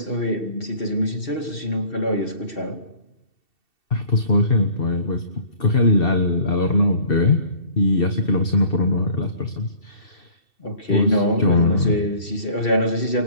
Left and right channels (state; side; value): late; right; 2.7 ms